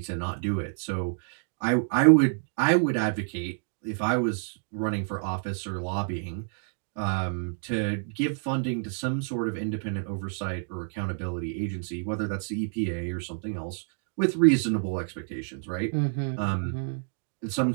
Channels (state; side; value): silent; left; digital silence